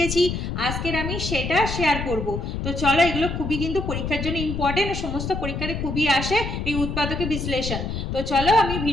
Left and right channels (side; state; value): left; noise; rumble, 4 dB below the sound